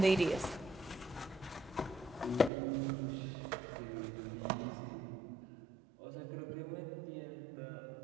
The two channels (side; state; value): left; drops out; at 2.5 s